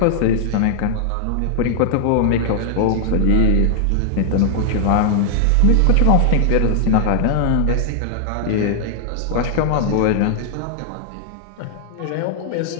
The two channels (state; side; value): different; both; correlation -0.01